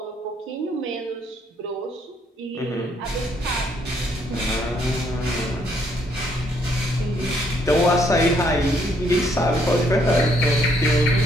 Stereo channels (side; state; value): both; normal; correlation 0.69